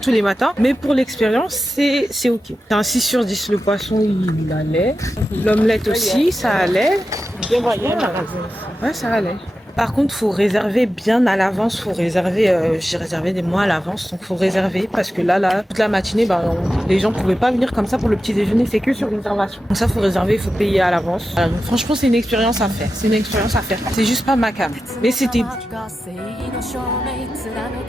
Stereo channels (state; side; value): normal; both; correlation 0.91